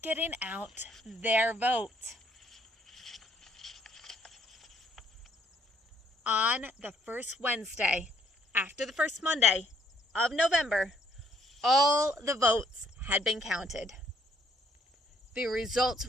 getting out their vote. On the first Wednesday, after the first Monday of November, all the votes had been counted. The results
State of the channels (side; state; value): both; normal; correlation 0.66